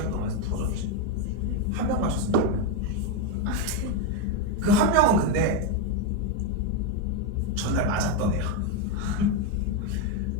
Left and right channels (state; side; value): normal; both; correlation 0.04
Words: 동안 해서 풀어줬지. 1명 맞췄습니다. 그 1명은 근데 전날 맞았던 애야.